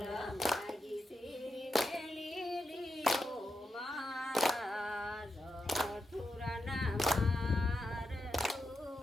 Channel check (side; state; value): both; normal; correlation 0.87